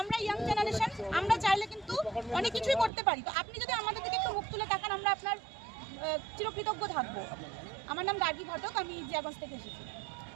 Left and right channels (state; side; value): drops out; left; at 2.9 s